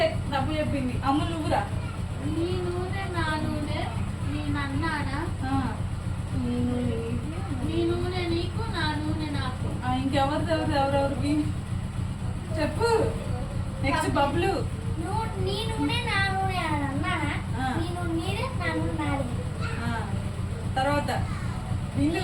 తప్పు చెప్పింది. అమ్మ నువ్వురా. నీ నూనె నా నూనె నేను అన్నానా, నీ నూనె నీకు నా నూనె నాకు. ఎవరెవరు చెప్పు. నెక్స్ట్ బబ్లు. నీ నూనె నా నూనె అని అన్నానా, నీ నూనె నీదే నా నూనె నాది. తర్వాత బిందు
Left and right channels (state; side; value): identical; both; correlation 1.00